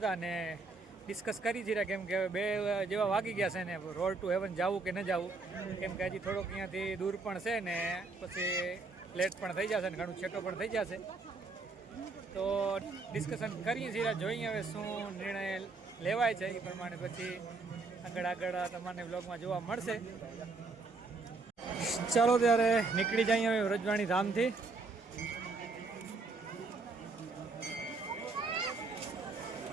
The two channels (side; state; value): left; quieter; 3.8 dB